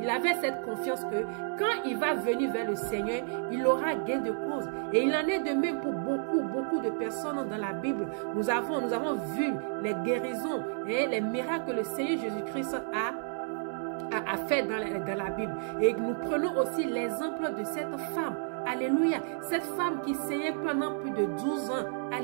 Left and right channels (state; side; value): silent; left; 57 dB below the other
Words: il avait cette confiance que quand il va venir vers le Seigneur, il aura gain de cause. Et il en est de même pour beaucoup de personnes dans la Bible. Nous avons vu les guérisons et les miracles que le Seigneur Jésus-Christ a fait dans la Bible. Et nous prenons aussi l'exemple de cette femme. Alléluia. Cette femme qui saignait pendant plus de 12 ans.